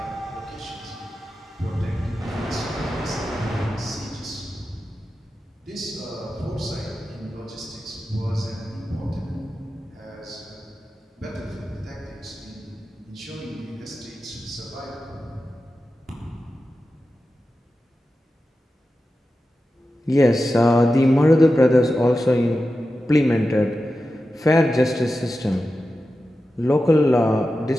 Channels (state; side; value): normal; both; correlation 0.92